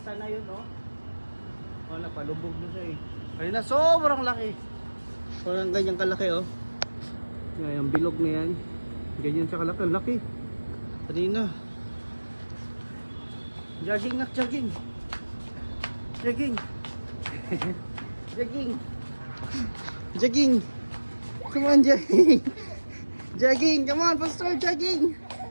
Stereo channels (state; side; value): inverted; both; correlation -1.00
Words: sana yun, oh. Oh, napalubog na siya eh. Kanina sobrang laki. Parang ganyan kalaki, oh. Yung bilog na yan. Ganyan siya kalaki. Laki. Kanina. Jogging, nak, jogging. Jogging. Jogging. Jogging. Come on, jogging. Jogging. Come on, Pastor, jogging.